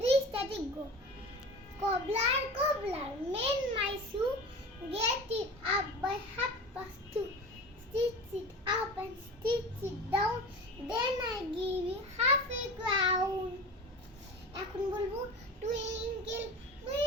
static, go. Cobbler, cobbler, mend my shoe, get it up by 2:30. Stitch it up and stitch it down, then I give you half a crown. এখন বলবো, twinkle,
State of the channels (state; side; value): normal; both; correlation 0.33